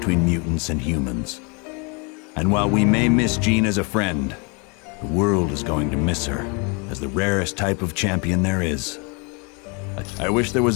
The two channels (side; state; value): right; quieter; 32.7 dB